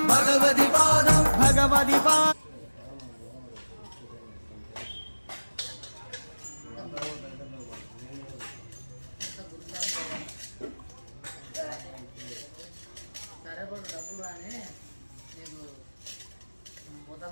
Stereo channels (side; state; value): both; inverted; correlation -1.00